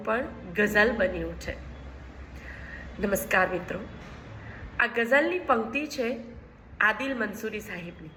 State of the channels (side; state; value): both; identical; correlation 1.00